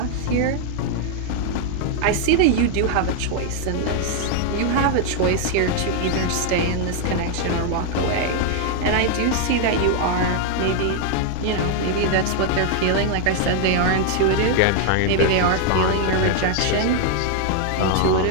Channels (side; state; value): both; different; correlation 0.00